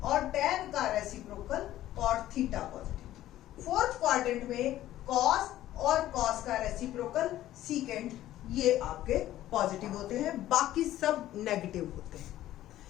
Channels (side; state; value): right; quieter; 13.8 dB